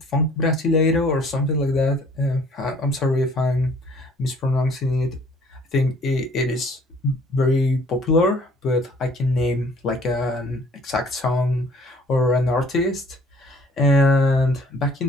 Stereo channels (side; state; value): both; normal; correlation 0.56